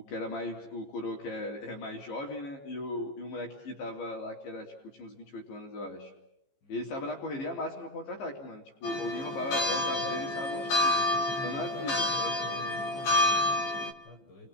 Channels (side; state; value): right; late; 15 ms